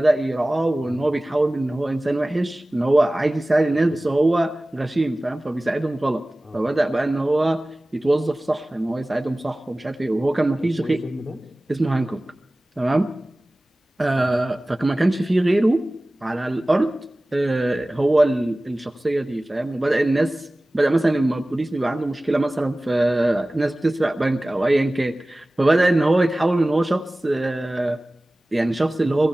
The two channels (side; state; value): both; normal; correlation 0.98